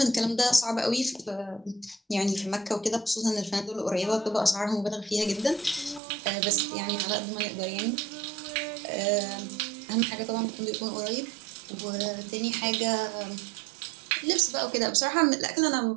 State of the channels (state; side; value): drops out; left; at 6.0 s